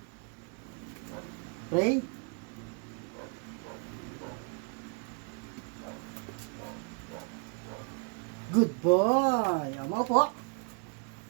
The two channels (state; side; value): quieter; left; 36.7 dB